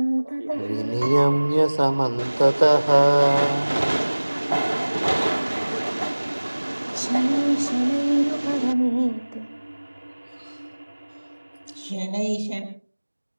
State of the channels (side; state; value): both; inverted; correlation -1.00